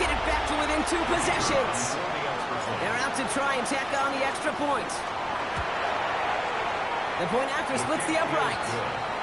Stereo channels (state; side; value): identical; both; correlation 1.00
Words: it back to within 2 possessions. They're out to try and tack on the extra point. The point after splits the upright.